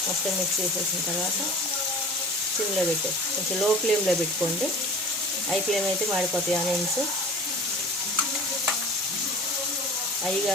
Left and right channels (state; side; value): normal; both; correlation 0.41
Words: మొత్తం మిక్స్ చేసేసిన తర్వాత సిమ్లో పెట్టేసి కొంచెం లో ఫ్లేమ్లో పెట్టుకోండి. హై ఫ్లేమ్ అయితే మాడిపోతాయి ఆనియన్స్. హై